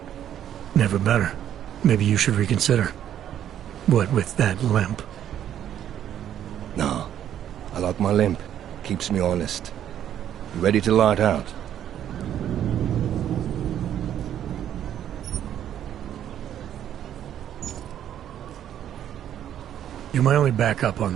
Never better. Maybe you should reconsider. What with that limp? No. I like my limp. Keeps me honest. You ready to light out? You're my only backup on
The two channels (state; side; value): quieter; left; 10.5 dB